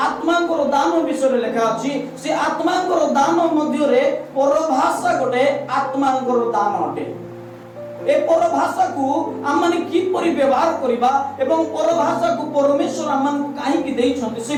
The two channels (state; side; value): identical; both; correlation 1.00